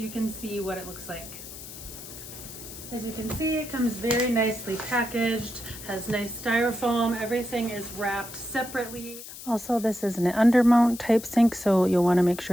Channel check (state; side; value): noise; left; hiss, 13 dB below the sound